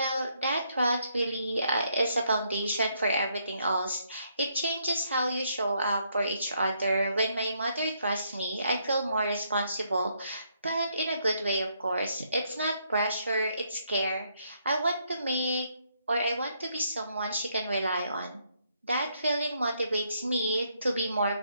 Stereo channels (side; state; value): both; inverted; correlation -0.73